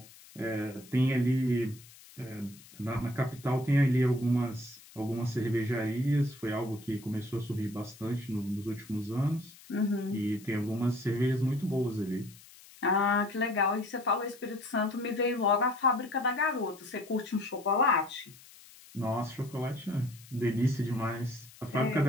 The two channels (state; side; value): noise; left; hiss, 22 dB below the sound